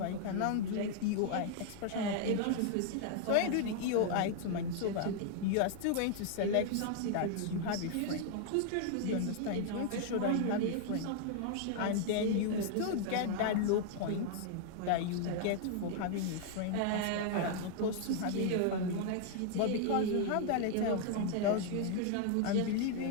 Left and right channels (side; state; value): both; different; correlation -0.01